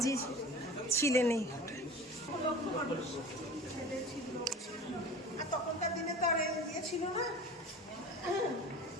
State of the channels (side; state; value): both; normal; correlation 0.36